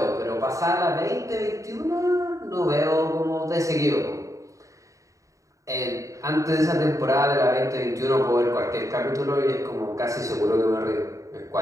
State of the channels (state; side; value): late; left; 0.16 ms